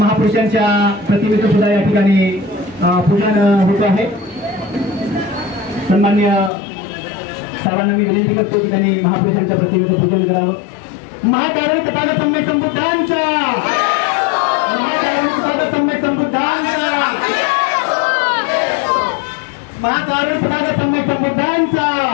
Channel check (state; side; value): drops out; right; at 6.5 s